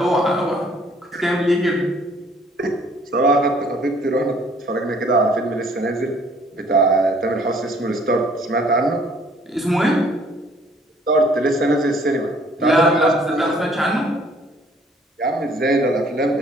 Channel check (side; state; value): both; normal; correlation 0.59